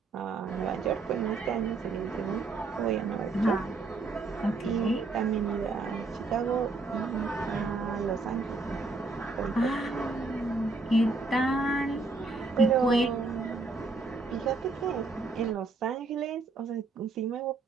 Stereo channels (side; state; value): left; quieter; 3.5 dB